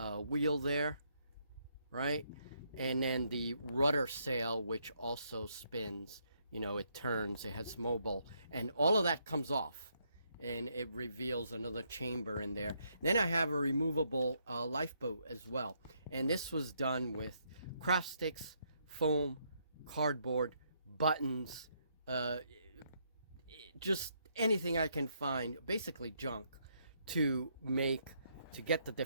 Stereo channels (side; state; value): both; inverted; correlation -0.74